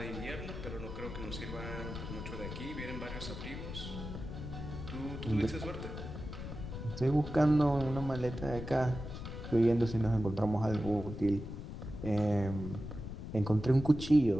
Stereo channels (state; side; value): noise; left; rumble, 8 dB below the sound